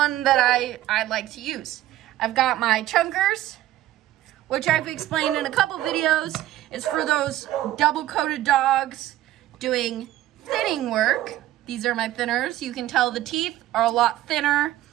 that I like to use. I've got my chunkers, which I've explained in a couple videos, is for those double-coated dogs doing thinning work. These are my thinners. You can tell the teeth are a lot thinner.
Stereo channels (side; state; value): left; quieter; 14.4 dB